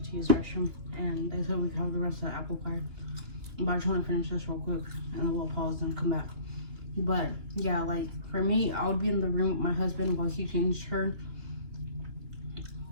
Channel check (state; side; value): late; left; 2.9 ms